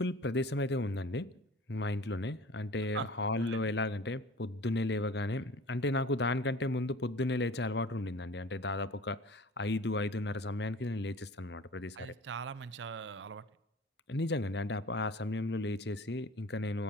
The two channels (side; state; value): both; normal; correlation 0.43